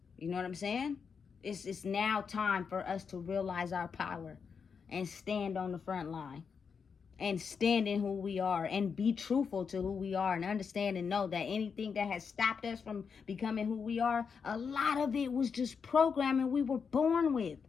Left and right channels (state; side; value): quieter; right; 6.0 dB